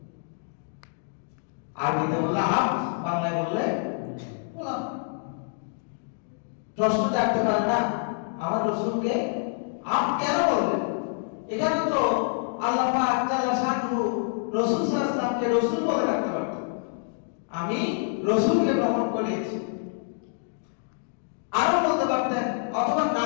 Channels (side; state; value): right; silent; 60 dB below the other